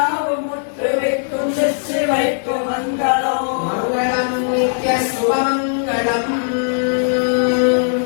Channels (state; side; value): silent; right; digital silence